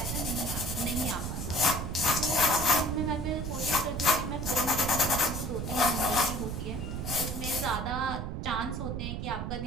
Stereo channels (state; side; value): noise; right; rumble, 4 dB below the sound